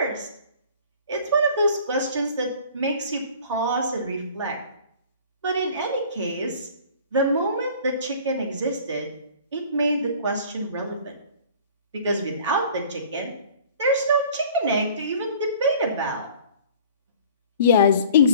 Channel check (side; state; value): both; inverted; correlation -0.48